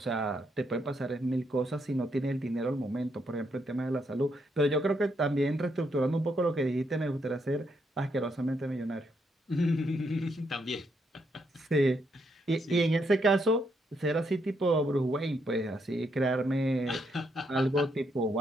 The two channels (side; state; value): both; normal; correlation 0.77